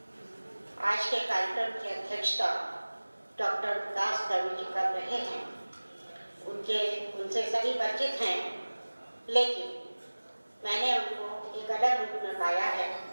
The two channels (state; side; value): inverted; both; correlation -1.00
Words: आज के कार्यक्रम की अध्यक्षता डॉक्टर विकास दवे जी कर रहे हैं। उनसे सभी परिचित हैं, लेकिन मैंने उनको एक अलग रूप में पाया है,